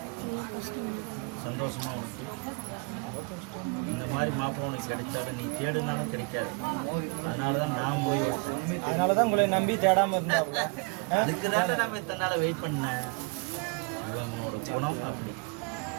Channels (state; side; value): quieter; left; 31.2 dB